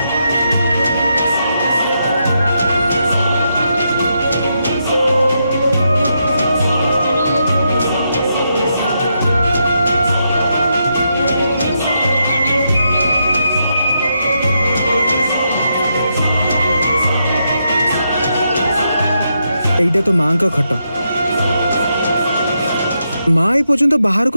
एइटा तो मां का खट। मां ए पर्यंत बाहर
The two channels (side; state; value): both; inverted; correlation -0.82